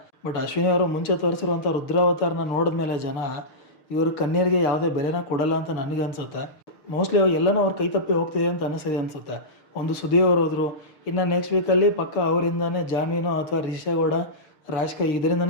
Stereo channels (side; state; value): right; late; 6.6 ms